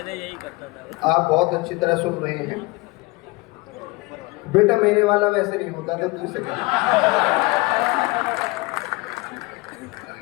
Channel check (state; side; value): quieter; right; 23.7 dB